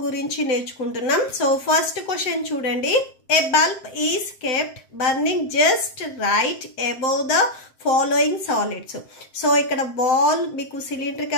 gurinchi నేర్చుకుంటున్నాం. So first question చూడండి. A bulb is kept burning just right above the following solids. So ikkada ball meeku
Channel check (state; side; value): late; right; 7.6 ms